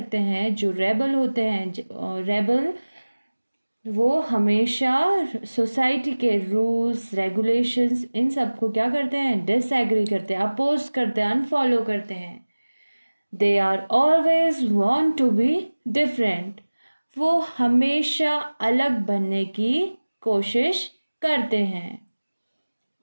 हैं जो रेबल होते हैं, रेबल वो हमेशा सोसाइटी के रूल्स रेगुलेशंस इन सबको क्या करते हैं? डिसएग्री करते हैं, अपोज करते हैं, अनफॉलो करते हैं. They are always want to be different. वो हमेशा अलग बनने की कोशिश करते हैं.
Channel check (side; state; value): both; inverted; correlation -1.00